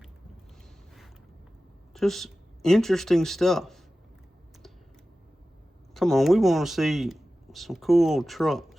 Just interesting stuff. Come on, we want to see some cool old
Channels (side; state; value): both; normal; correlation 0.95